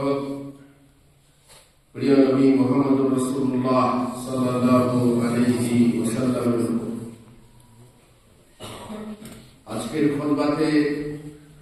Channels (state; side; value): identical; both; correlation 1.00